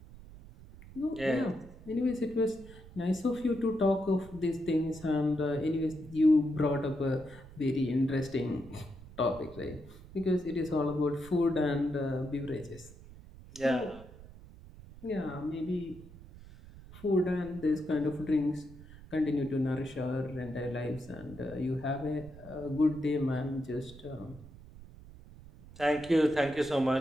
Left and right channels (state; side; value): noise; right; rumble, 18 dB below the sound